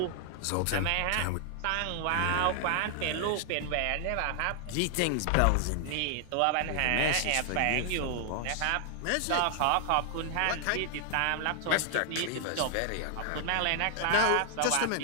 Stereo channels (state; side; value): different; both; correlation 0.00